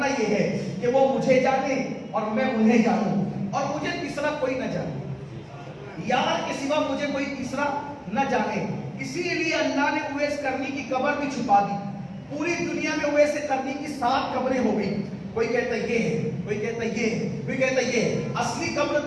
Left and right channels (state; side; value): identical; both; correlation 1.00